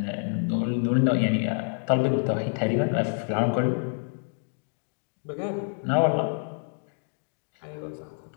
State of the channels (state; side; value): silent; right; 60 dB below the other